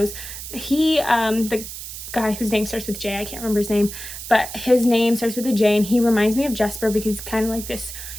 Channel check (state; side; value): noise; right; hiss, 10 dB below the sound